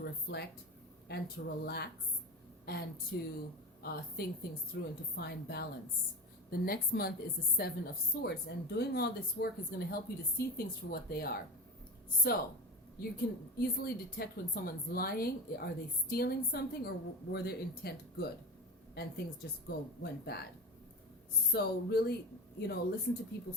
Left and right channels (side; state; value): both; normal; correlation 0.24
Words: reflect and to relax and to think things through and to find balance. The next month is the Seven of Swords, and doing all this work is going to help you to see things for what they are. So you can easily detect when someone's lying. Are they stealing something, or were their intent good and things just went bad? So really, listen to